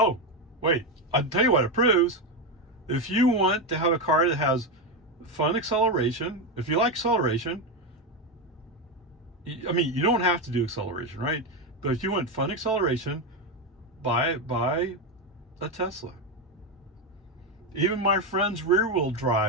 wait. I'll tell you what it proves. If you want to have a car that has fun acceleration, if you like acceleration, I mean, you don't have to do acceleration, right? But if you want fun acceleration, buy a Tesla. Even my friend's rear-wheel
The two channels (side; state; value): both; normal; correlation 0.11